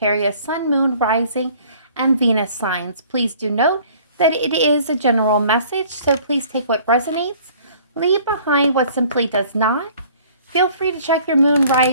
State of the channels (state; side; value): inverted; both; correlation -0.54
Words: Sun, Moon, Rising, and Venus signs. Please do note that it is a general message, so please take what resonates, leave behind what simply does not. Feel free to check your Moon,